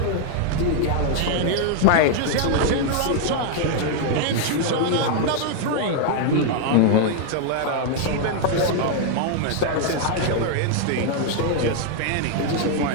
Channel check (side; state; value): both; different; correlation 0.00